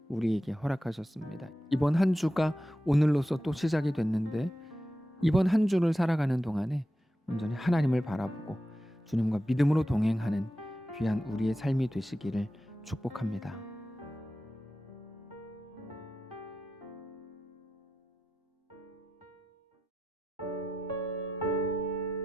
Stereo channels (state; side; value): normal; both; correlation 0.91